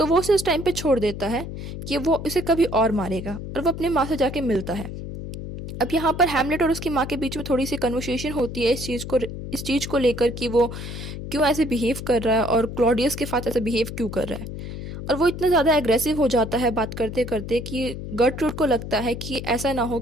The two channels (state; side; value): noise; left; hum, 8 dB below the sound